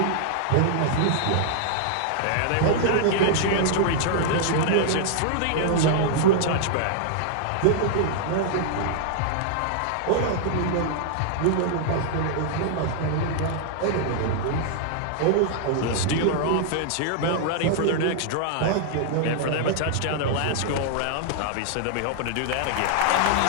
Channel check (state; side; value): different; both; correlation -0.01